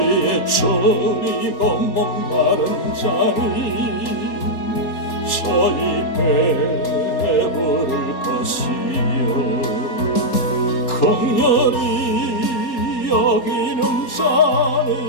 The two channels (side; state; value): right; late; 3.9 ms